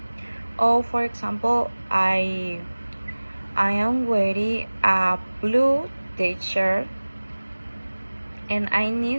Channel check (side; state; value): both; inverted; correlation -1.00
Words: Or for example, I am wearing a blue t-shirt, and I